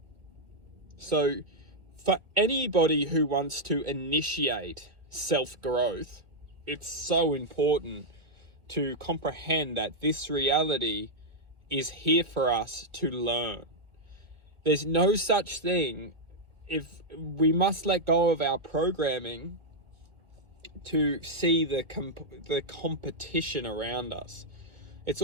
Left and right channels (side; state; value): left; late; 1.9 ms